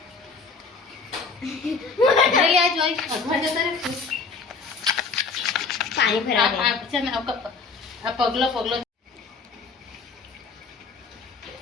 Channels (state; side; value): quieter; right; 4.6 dB